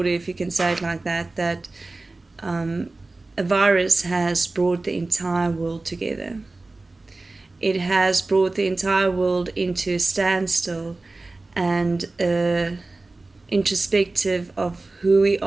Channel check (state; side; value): quieter; left; 3.3 dB